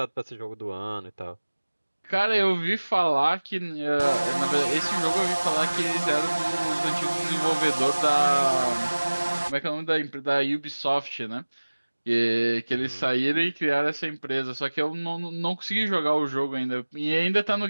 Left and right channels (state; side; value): inverted; both; correlation -1.00